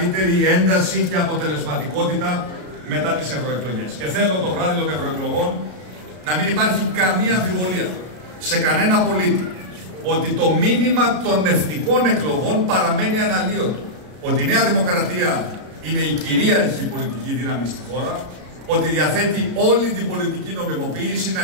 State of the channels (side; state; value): left; late; 33 ms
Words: ένταση και αποτελεσματικότητα μετά τις ευρωεκλογές. Και θέλω το βράδυ των ευρωεκλογών να μην υπάρχει καμία αμφιβολία σε κανένα πολίτη ότι το μήνυμα των εθνικών εκλογών παραμένει αναλύωτο. Ότι η Νέα Δημοκρατία είναι η κυρίαρχη πολιτική δύναμη στη χώρα, ότι διαθέτει όλη την πολιτική νομιμοποίηση να